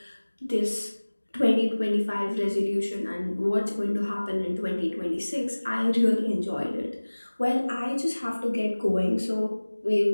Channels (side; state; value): both; inverted; correlation -1.00